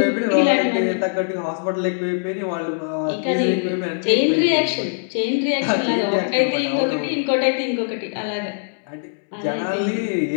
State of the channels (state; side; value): silent; right; 65 dB below the other